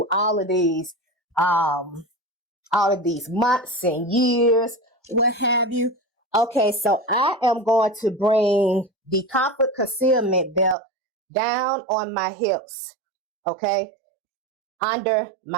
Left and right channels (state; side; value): drops out; left; at 10.8 s